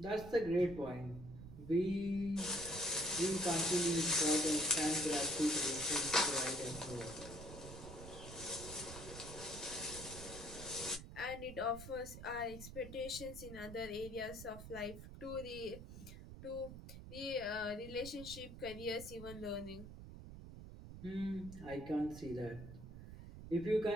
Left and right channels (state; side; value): noise; right; rumble, 12 dB below the sound